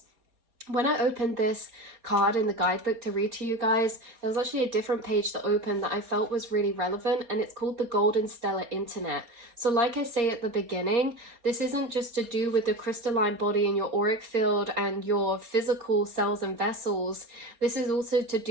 When I opened this card in the guidebook to read to you guys, there was actually a different page that opened that I felt was really relevant, and it's called the Golden Stellar Internet. So like I say at the beginning, this isn't just to do with the crystalline body and your auric field and your physical cells and vessels. This is also to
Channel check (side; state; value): left; late; 4.3 ms